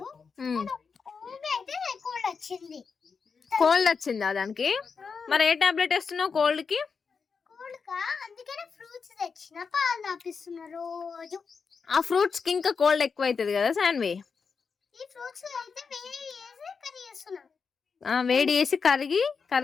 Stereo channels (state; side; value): quieter; right; 5.5 dB